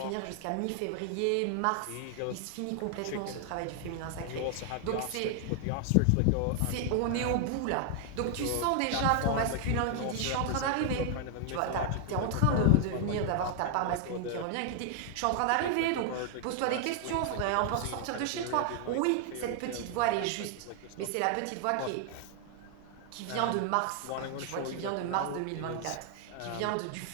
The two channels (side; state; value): both; different; correlation 0.00